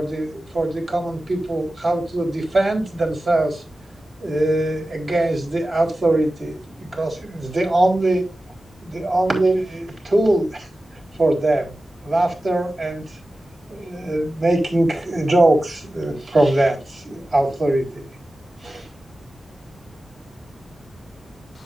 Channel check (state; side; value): normal; both; correlation 0.95